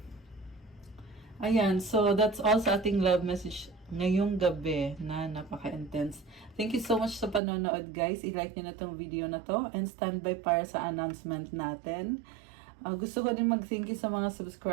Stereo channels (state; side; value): drops out; left; at 7.4 s